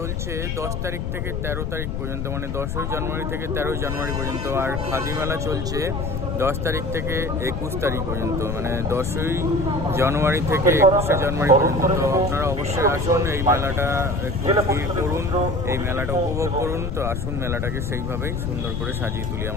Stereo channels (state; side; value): noise; left; rumble, 3 dB below the sound